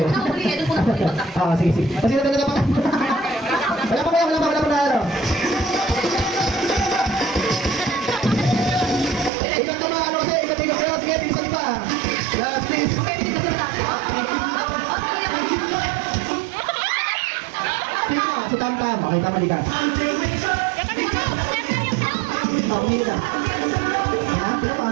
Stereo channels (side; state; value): left; drops out; at 9.3 s